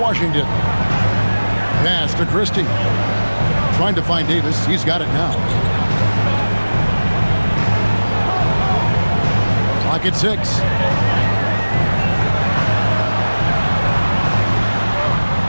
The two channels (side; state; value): both; inverted; correlation -1.00